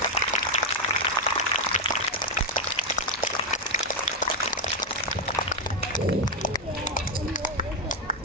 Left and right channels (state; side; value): normal; both; correlation 0.05